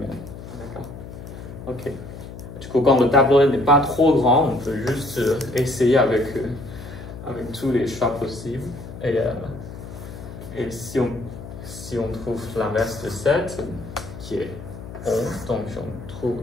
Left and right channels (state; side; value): noise; left; hum, 12 dB below the sound